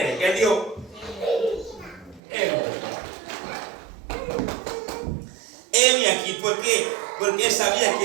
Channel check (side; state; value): left; drops out; at 2.2 s